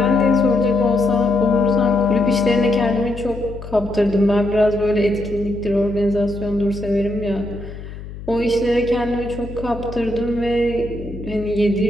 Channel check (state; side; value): noise; left; hum, 12 dB below the sound